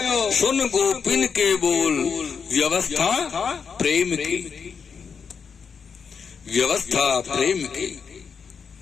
सुन गोपिन के बोल, व्यवस्था प्रेम की, व्यवस्था प्रेम की।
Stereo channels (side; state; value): right; quieter; 6.2 dB